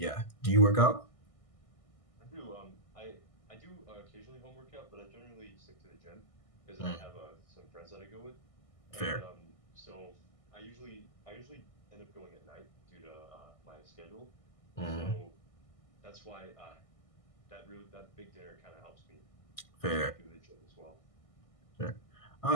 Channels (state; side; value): late; right; 1.6 ms